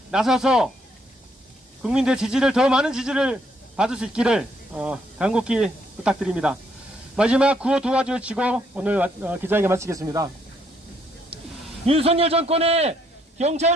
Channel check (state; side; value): normal; both; correlation 0.71